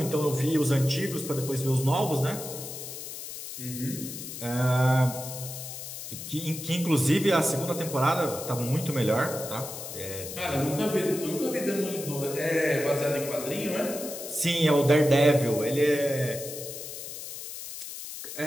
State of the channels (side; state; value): left; noise; hiss, 9 dB below the sound